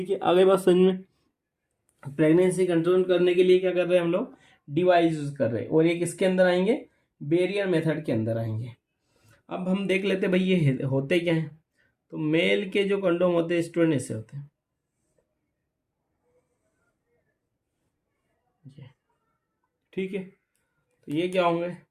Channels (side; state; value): both; identical; correlation 1.00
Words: है। आगे बात समझ में। प्रेगनेंसी कंट्रोल करने के लिए क्या कर रहे हैं हम लोग, डिवाइस यूज कर रहे हैं। और ये किसके अंदर आएंगे, बैरियर मेथड के अंदर आएंगे। अब हम देख लेते हैं भाई ये होते क्या हैं। तो मेल के जो कंडोम होते हैं स्टूडेंट ऐसे होते हैं, ठीक है, तो ये क्या होंगे,